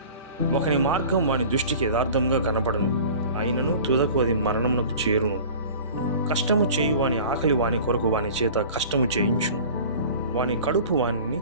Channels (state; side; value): inverted; both; correlation -0.42